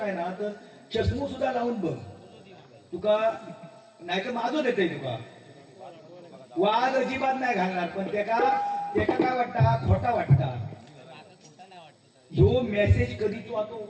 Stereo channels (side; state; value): both; identical; correlation 1.00